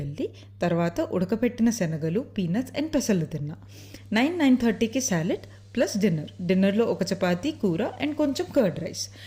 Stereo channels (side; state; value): both; identical; correlation 1.00